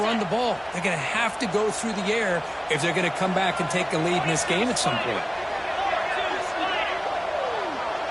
the ball. They're going to have to go through the air if they're going to come back and take a lead in this game at some point.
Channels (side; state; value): both; identical; correlation 1.00